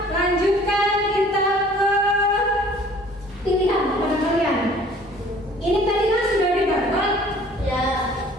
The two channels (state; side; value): normal; both; correlation 0.52